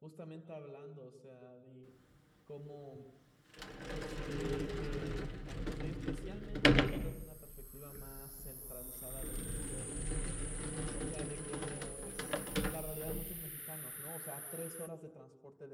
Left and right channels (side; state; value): both; identical; correlation 1.00